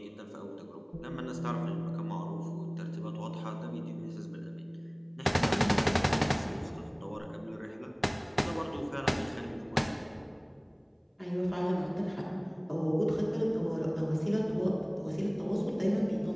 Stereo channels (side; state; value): both; identical; correlation 1.00